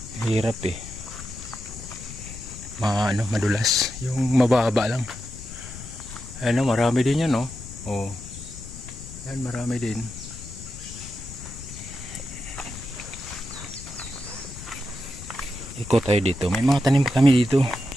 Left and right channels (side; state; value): left; noise; rumble, 13 dB below the sound